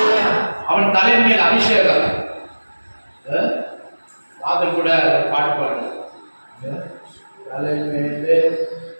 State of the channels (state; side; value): inverted; both; correlation -1.00